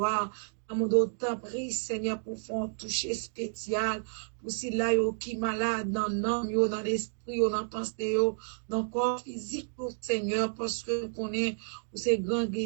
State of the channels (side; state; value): left; silent; digital silence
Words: nous d'autant prie, Seigneur, pour faire un toucher spécial, pour si là, yo qui malade dans l'âme, yo dans l'esprit, yo dans la pensée, yo dans le corps physique, pour Seigneur, parce que nous connaissons, ces grands